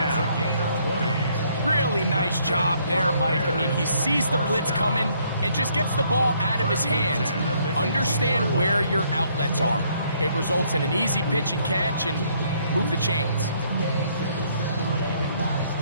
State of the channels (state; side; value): inverted; both; correlation -0.67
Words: Really nice job there, Mike. I mean, he sees the blitz coming and just gets the ball out of his hands. Understand where your outlets are. It results in an easy pitch and catch and move the chains.